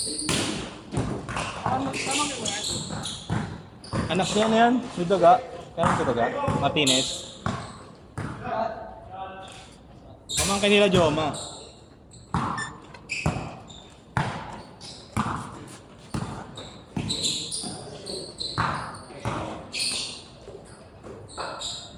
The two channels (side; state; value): both; identical; correlation 1.00